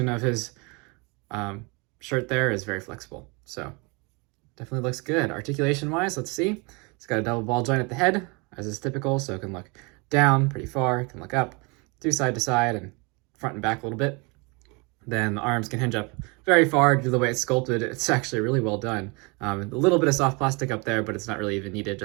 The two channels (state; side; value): quieter; left; 29.5 dB